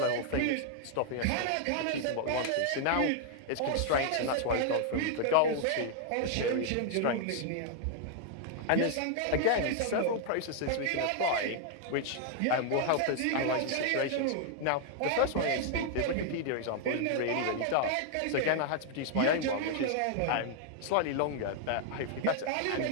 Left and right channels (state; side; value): different; both; correlation 0.00